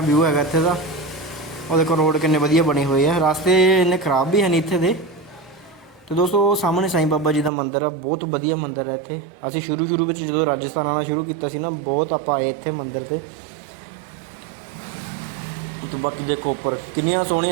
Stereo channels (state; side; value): drops out; left; at 7.5 s